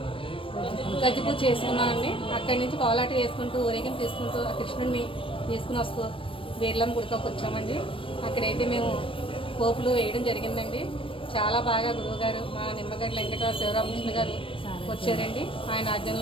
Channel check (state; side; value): late; right; 0.25 ms